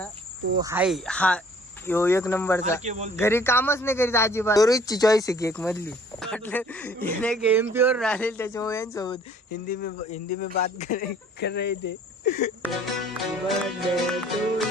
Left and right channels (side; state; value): both; normal; correlation 0.55